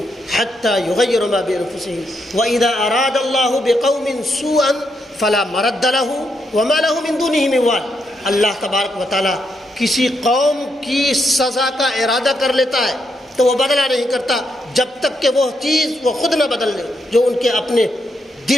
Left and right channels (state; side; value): normal; both; correlation 0.80